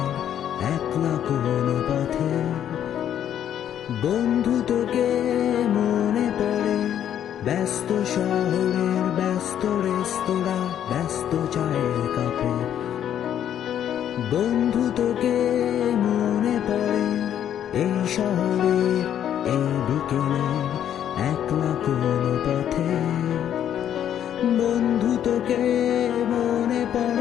একলা কোনো পথে। বন্ধু তোকে মনে পড়ে ব্যস্ত শহরের ব্যস্ত রেস্তোরাঁ ব্যস্ত চায়ের কাপে। বন্ধু তোকে মনে পড়ে এই শহরের এই বিকেলে একলা কোনো পথে। বন্ধু তোকে মনে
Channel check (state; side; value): quieter; right; 10.1 dB